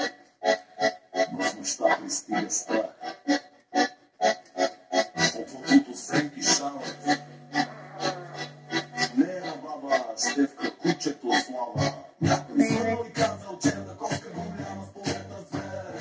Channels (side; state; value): both; identical; correlation 1.00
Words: но в нощта пристига страх. От водото сенки шават. Не е на баба Стевка, кучето слава. Някой звънал и казал, че на котка голяма в полета